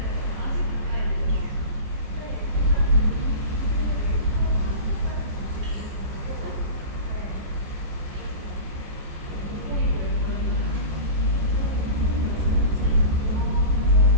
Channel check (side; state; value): left; late; 14 ms